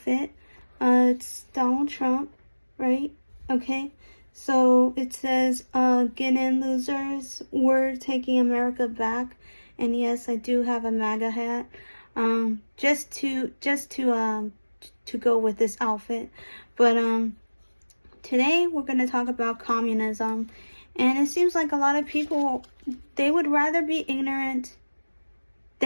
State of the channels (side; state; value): both; inverted; correlation -1.00